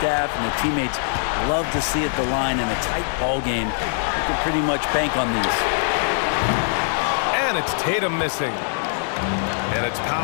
and the teammates love to see at the line in a tight ball game. You can pretty much bank on these. And it's Tatum missing. And it's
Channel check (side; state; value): right; silent; digital silence